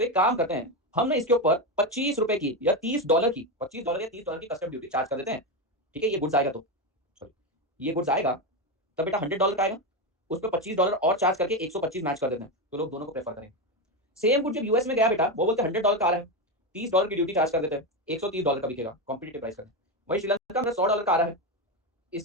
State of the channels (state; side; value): normal; both; correlation 0.13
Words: एक काम करते हैं, हमने इसके ऊपर $25 की या $30 की, $25 या $30 की कस्टम ड्यूटी चार्ज कर देते हैं, ठीक है। ये गुड्स आएगा तो सॉरी ये गुड्स आएगा तब बेटा $100 का आएगा, उस पर $25 और चार्ज करके 125 मैच कर देते हैं, तो लोग दोनों को प्रेफर करेंगे। सेम गुड जब यूएस में गया बेटा, वो बोलते हैं $100 का आ रहा है, $30 की ड्यूटी चार्ज कर देते हैं, $130 का बिकेगा, कॉम्पिटिटिव प्राइस कर। वही श्रीलंका में $100 का आ रहा है,